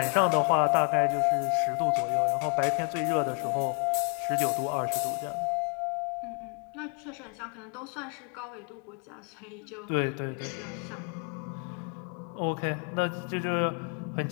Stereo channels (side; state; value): right; quieter; 38.5 dB